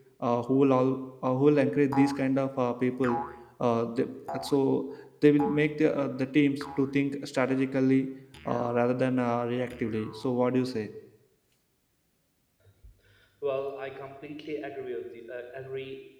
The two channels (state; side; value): identical; both; correlation 1.00